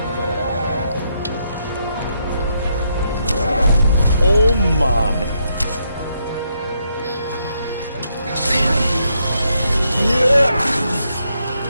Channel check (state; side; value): inverted; both; correlation -0.78